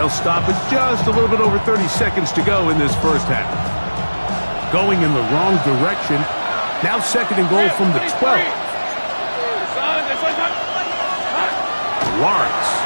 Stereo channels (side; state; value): both; inverted; correlation -1.00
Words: stop it just a little bit over 30 seconds to go in this 1st half. Going in the wrong direction. Now 2nd and goal from the 12. Lawrence.